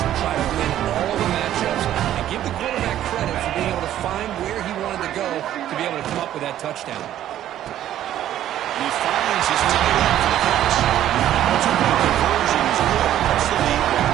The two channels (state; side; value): quieter; left; 12.0 dB